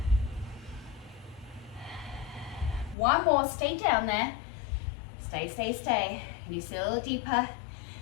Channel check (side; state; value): right; drops out; at 3.0 s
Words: One more, stay down there. Stay, stay, stay. Can you see a little deeper?